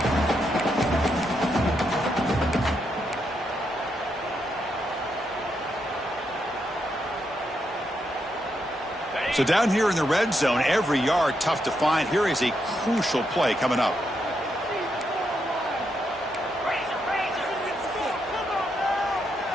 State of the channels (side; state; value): both; normal; correlation 0.80